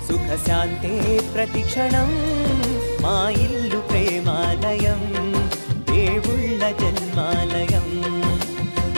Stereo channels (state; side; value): inverted; both; correlation -1.00